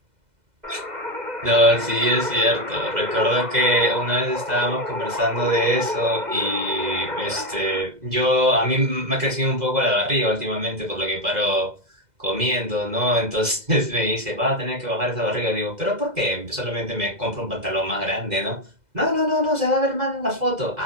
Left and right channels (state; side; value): late; left; 2.0 ms